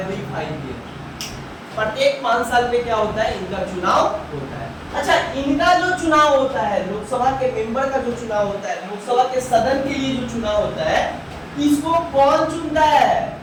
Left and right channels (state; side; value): identical; both; correlation 1.00